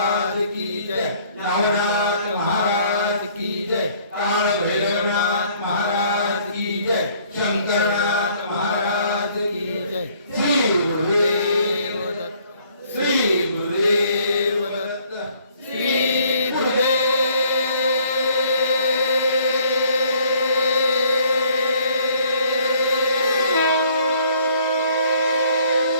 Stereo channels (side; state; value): both; inverted; correlation -0.61